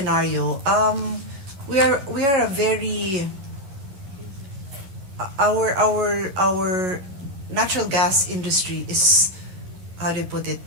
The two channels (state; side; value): late; left; 11 ms